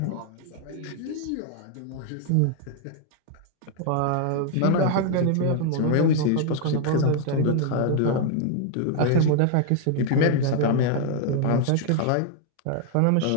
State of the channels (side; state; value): both; different; correlation 0.00